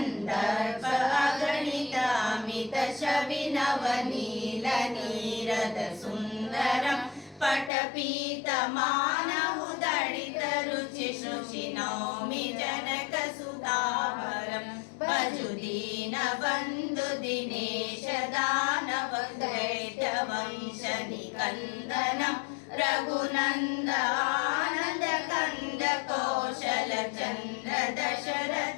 अगणित अमित शविनवनीलनीरद सुन्दरं पटपीतमानहुदडितरुचि शुचिनौमि जनकसुधावरं भजुदीनबन्धु दिनेश दानव दैत्यवंशनिकन्दनं रघुनन्द आनन्द कन्द कौशलचन्द्र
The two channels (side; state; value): right; drops out; at 7.7 s